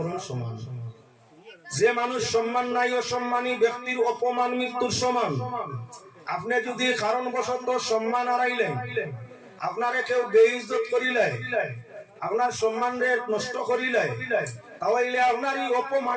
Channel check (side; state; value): both; identical; correlation 1.00